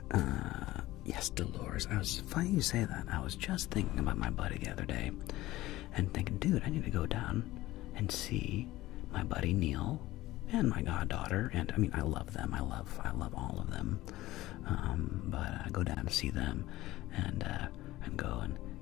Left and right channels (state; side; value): quieter; right; 17.0 dB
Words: Yes, Dolores. Funny you say that. I was just thinking about my buddy the other day, and thinking, dude, I need to go down and see my buddy Neil and my goddaughter. And I mean, I love them. I love all of them. But I go down to see them, and go